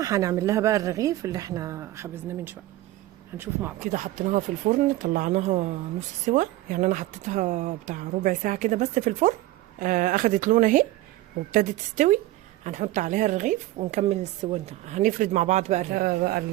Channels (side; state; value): left; quieter; 16.3 dB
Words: هنعمل لها بقى الرغيف اللي احنا خبزناه من شوية. هنشوف مع بعض. كده حطيناها في الفرن، طلعناها نص سوا، يعني انا حطيتها بتاع ربع ساعة كده بس في الفرن. اخدت لون اهي وابتدت تستوي. هنحط عليها الرغيف ونكمل السوا ده. هنفرد مع بعض بقى